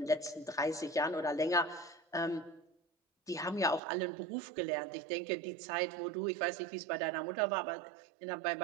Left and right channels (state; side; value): drops out; left; at 3.8 s